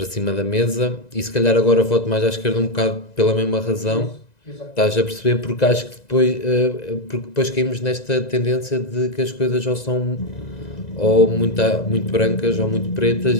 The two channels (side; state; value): right; late; 1.9 ms